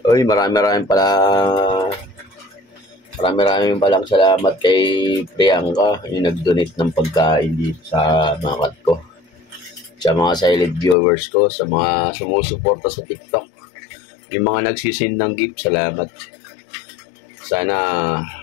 Uy, marami palang salamat kay Priyanka, yung nag-donate ng pagkain dito sa mga ko. Sa mga silent viewers ko, sa mga sumusuporta sa TikTok, yung mga nagsisin ng gift, salamat. Sana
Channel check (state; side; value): drops out; right; at 11.0 s